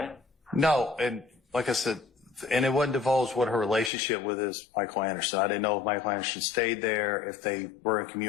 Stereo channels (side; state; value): right; drops out; at 3.9 s